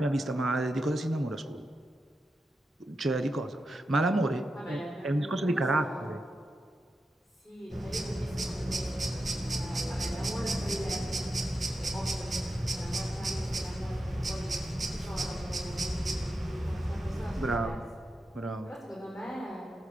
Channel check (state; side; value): normal; both; correlation 0.89